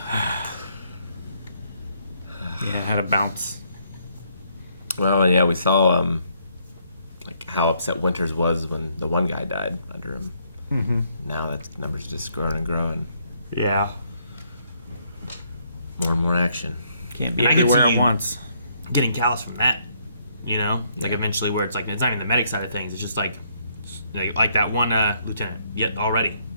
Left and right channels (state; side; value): inverted; both; correlation -0.70